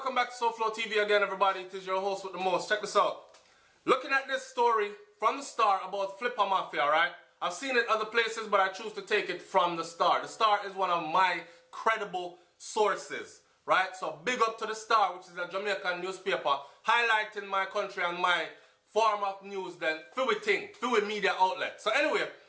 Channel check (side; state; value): both; identical; correlation 1.00